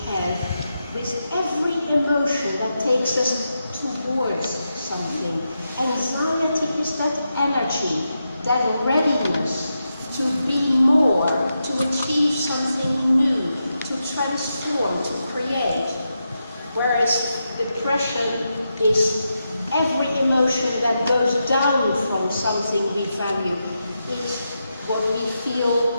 have with every emotion that takes us towards something. Anxiety is that energy, that readiness to be more, to achieve something new, to transform, to create. Whereas depression is every emotion that goes down from something we value. It's what we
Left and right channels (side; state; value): both; inverted; correlation -0.87